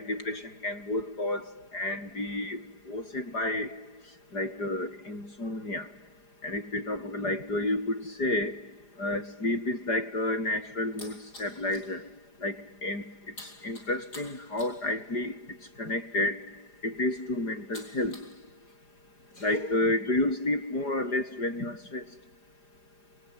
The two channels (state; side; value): late; right; 4.9 ms